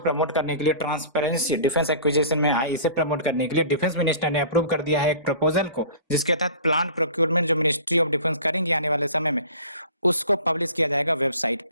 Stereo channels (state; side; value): inverted; both; correlation -0.43